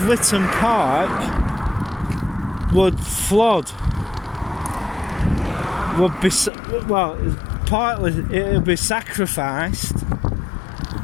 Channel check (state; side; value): drops out; right; at 6.5 s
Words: Witton Park would flood, partly it would be sacrificed